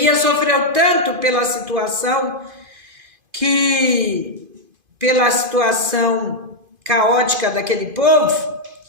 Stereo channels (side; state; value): left; late; 2.5 ms